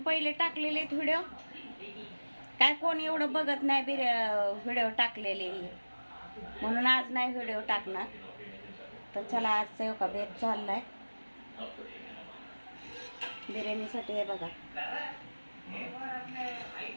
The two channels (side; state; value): both; inverted; correlation -1.00